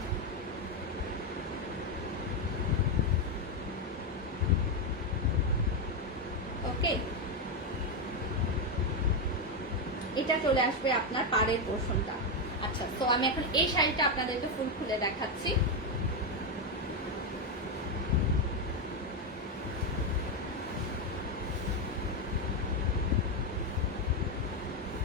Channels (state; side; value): normal; both; correlation 0.06